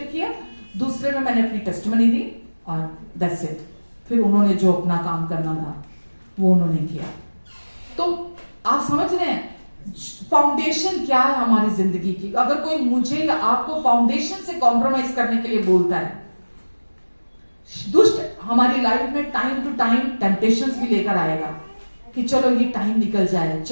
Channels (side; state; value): both; inverted; correlation -1.00